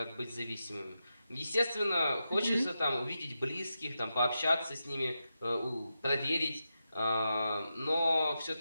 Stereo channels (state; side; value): inverted; both; correlation -0.88